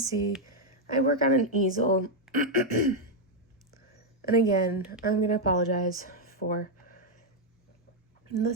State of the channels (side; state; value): both; normal; correlation 0.00